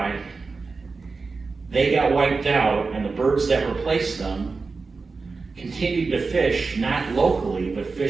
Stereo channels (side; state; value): left; quieter; 4.3 dB